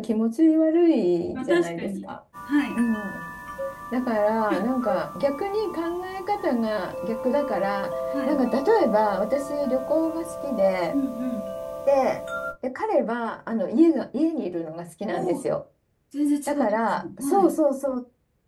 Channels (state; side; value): identical; both; correlation 1.00